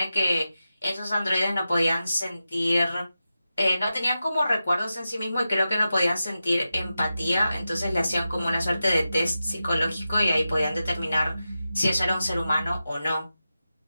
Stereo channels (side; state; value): both; inverted; correlation -0.92